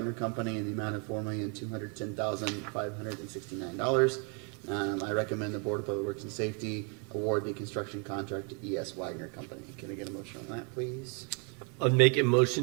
Company in the amount of $4,210,569. I recommend the Board of Public Works and Safety award the construction contract to E.S. Wagner Company. Can I get a motion on that, please? I'll make a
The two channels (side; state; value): left; quieter; 35.9 dB